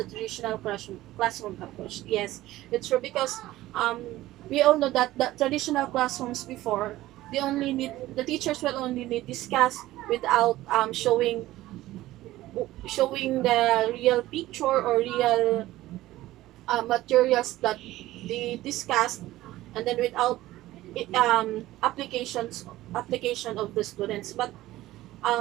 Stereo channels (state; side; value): quieter; left; 16.2 dB